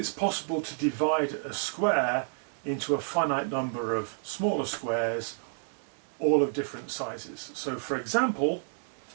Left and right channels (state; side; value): silent; left; digital silence